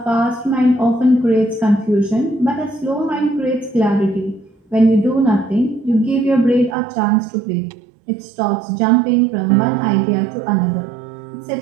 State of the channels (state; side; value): drops out; left; at 6.8 s